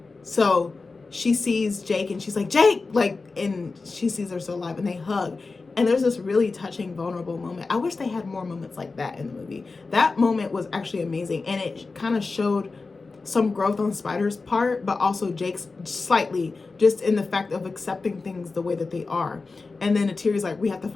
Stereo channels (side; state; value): right; quieter; 4.0 dB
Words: so she sees Jake and she's like, Jake, like, and she sees her still alive, and they hug. And there's this really touching, vulnerable moment. I wish they had more moments like that in the movie. That moment was actually amazing. And it kind of showed some growth on Spider's part, but also Jake's slightly, just in the fact of accepting things the way that they are. And then Neytiri's like, we have to